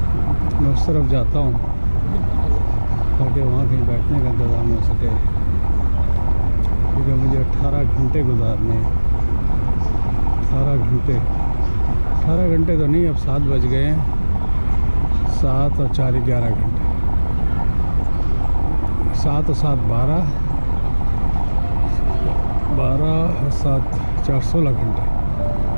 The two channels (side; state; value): both; inverted; correlation -1.00